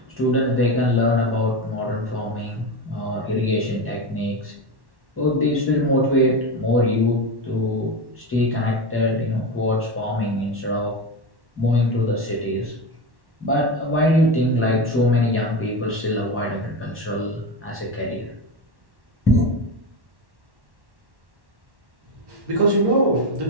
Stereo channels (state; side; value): late; left; 1.1 ms